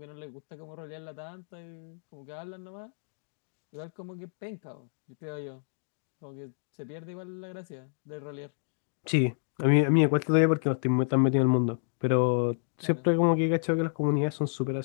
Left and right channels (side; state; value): right; silent; digital silence